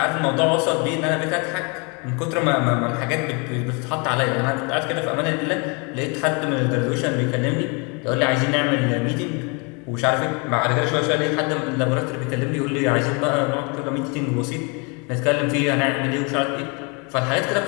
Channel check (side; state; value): right; quieter; 32.2 dB